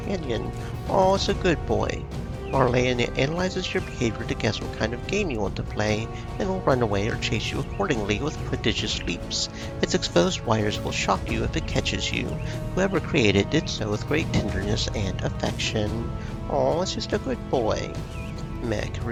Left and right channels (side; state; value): both; identical; correlation 1.00